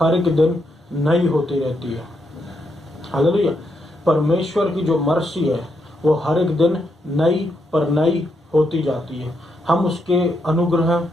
एक दिन नई होती रहती है। हालेलुया। परमेश्वर की जो मर्सी है वो हर एक दिन नई पर नई होती जाती है। हम उसके अनुग्रह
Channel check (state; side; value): normal; both; correlation 0.80